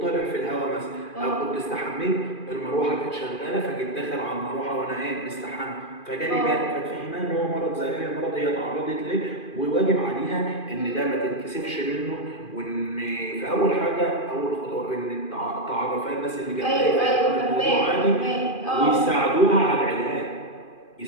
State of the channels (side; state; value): right; late; 2.4 ms